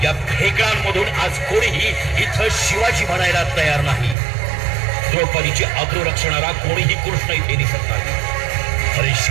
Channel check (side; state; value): left; drops out; at 4.2 s